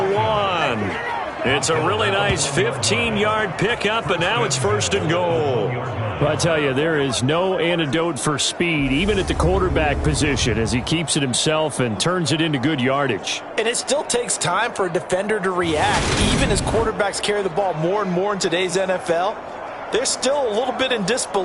1. It's a really nice 15-yard pickup, and now it's 1st and goal. Well, I tell you, there is no antidote for speed, even at the quarterback position, as he keeps it himself and turns it into good yardage. And it still takes time for a defender to react. Even as quarterbacks carry the ball more and more in today's NFL, they're still a little bit in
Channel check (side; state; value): both; identical; correlation 1.00